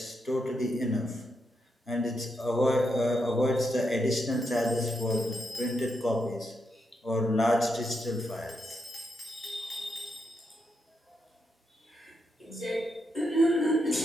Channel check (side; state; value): both; normal; correlation 0.82